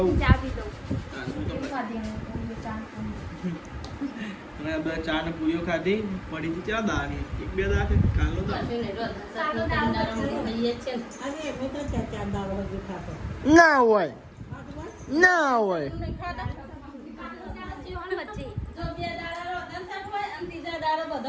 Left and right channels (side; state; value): both; identical; correlation 1.00